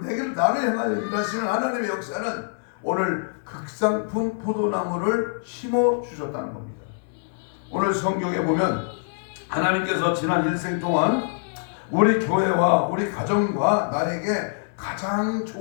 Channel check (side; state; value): right; silent; 62 dB below the other